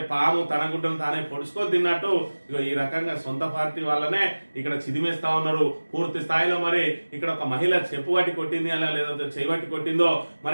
పాము తన గుడ్డను తానే పొడుచుకొని తిన్నట్టు ఈ రకంగా సొంత పార్టీ వాళ్ళనే ఇక్కడ చిదిమేస్తా ఉన్నారు పూర్తి స్థాయిలో. మరి ఇక్కడ ఒక మహిళ చెప్పు పట్టి కొట్టింది అలా లేదంటే చేయబట్టి కొట్టిందో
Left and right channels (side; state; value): both; inverted; correlation -1.00